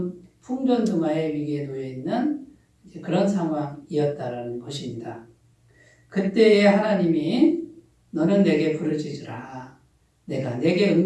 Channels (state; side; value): identical; both; correlation 1.00